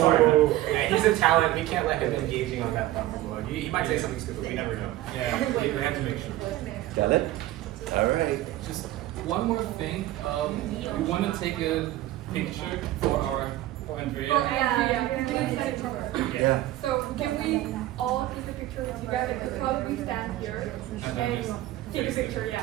Yeah, he's a talent. We can't let him engaging on that platform. He might say something stupid. We never know. Yeah, we have to make sure. Got it? All right. Just one more thing. We want to take a picture for Andrea. Yeah. So can we all take a picture together? We'll probably stand here and take a picture,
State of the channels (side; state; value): left; quieter; 15.3 dB